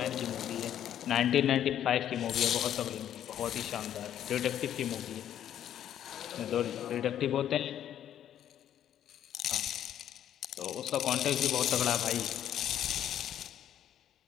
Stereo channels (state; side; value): quieter; right; 10.6 dB